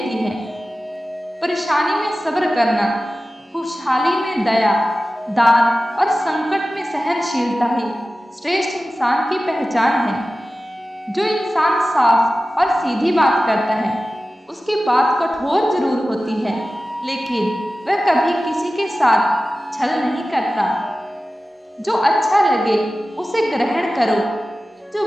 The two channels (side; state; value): both; normal; correlation 0.95